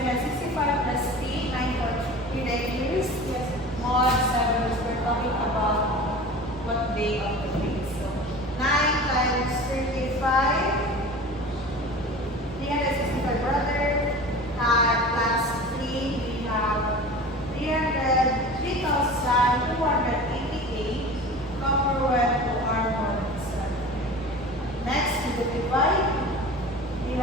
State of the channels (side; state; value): both; normal; correlation 0.37